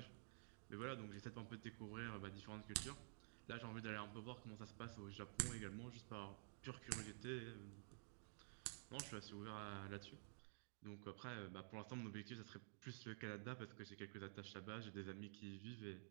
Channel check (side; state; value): left; silent; digital silence